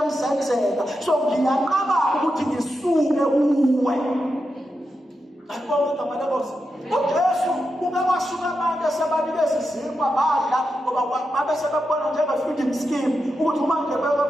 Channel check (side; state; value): both; normal; correlation 0.87